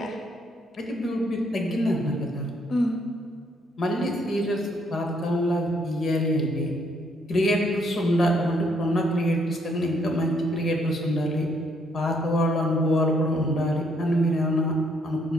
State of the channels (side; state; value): both; normal; correlation 0.70